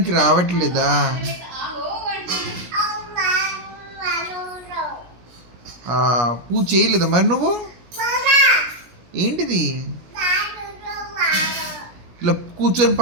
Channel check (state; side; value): late; left; 17 ms